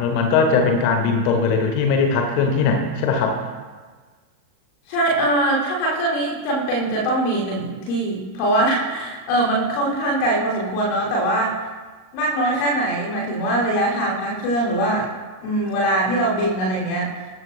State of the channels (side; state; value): right; late; 38 ms